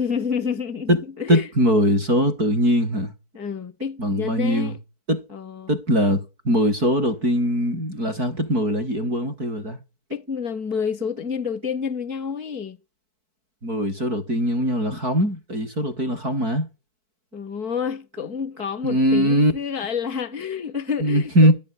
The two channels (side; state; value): left; late; 4.6 ms